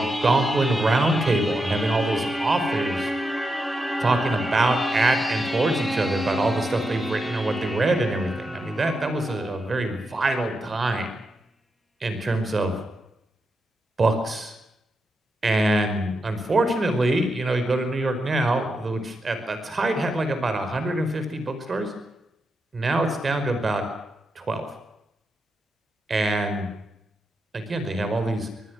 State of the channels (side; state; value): both; normal; correlation 0.86